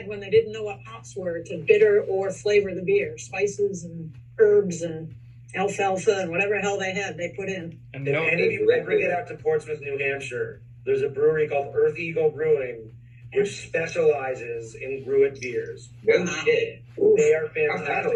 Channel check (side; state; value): both; identical; correlation 1.00